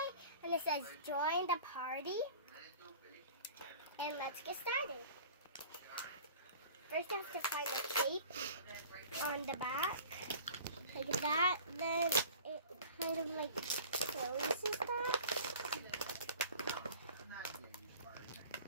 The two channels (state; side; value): inverted; both; correlation -0.42